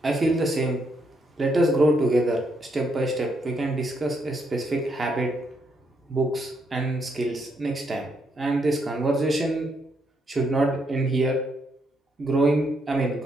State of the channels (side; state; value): both; normal; correlation 0.76